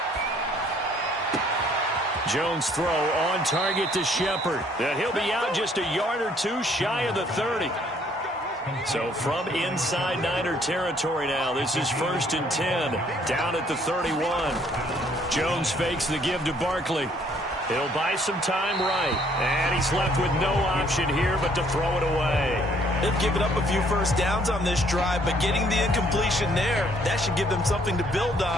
Jones throw on target to Shepard. And he'll be out just a yard or 2 shy of the 30. So from inside Niner territory now, this is 1st and 10. Down at the 31. Jones fakes the give to Barkley. He'll buy some time right. And he's left with no option here but to throw it away. They've given up a few first downs on this drive, but getting the incompletion there, that should give them something to build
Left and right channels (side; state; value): both; normal; correlation 0.63